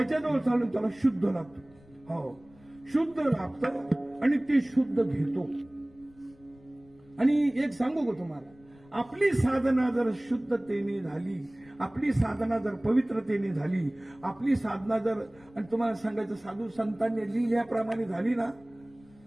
चालून त्याला शुद्ध लागतं. हो, शुद्ध लागतं आणि ते शुद्ध घेतो. आणि एक सांगू का तुम्हाला, आपली साधना जर शुद्धतेने झाली, आपली साधना जर पवित्रतेने झाली, आपली साधना जर, आणि तुम्हाला सांगायचं साधू संतांनी लिहिल्याप्रमाणे झाली ना,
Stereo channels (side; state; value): left; noise; rumble, 27 dB below the sound